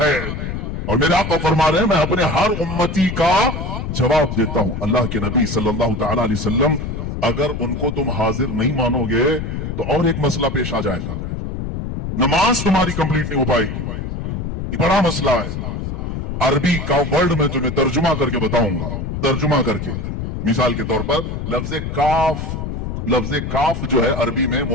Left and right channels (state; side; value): noise; left; rumble, 4 dB below the sound